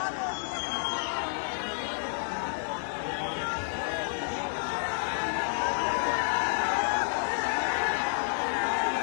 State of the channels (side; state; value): right; silent; digital silence